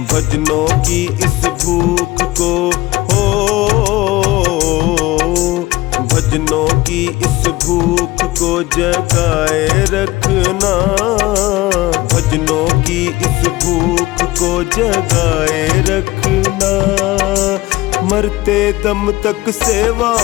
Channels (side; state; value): right; quieter; 18.9 dB